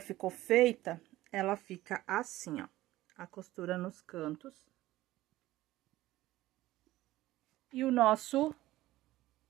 feita, ela fica assim, ó, a costura nos cantos. E o nosso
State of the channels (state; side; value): quieter; left; 16.4 dB